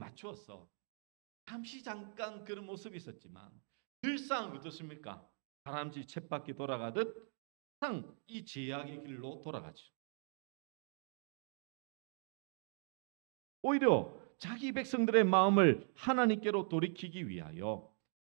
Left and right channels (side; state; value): left; silent; 51 dB below the other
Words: 잠시 잠깐 그런 모습이 있었지만 늘상 어떻습니까? 다람쥐 쳇바퀴 돌아가듯 항상 이 죄악의 길로 돌아가죠. 오히려 자기 백성들의 마음을 하나님께로 돌이키기 위하여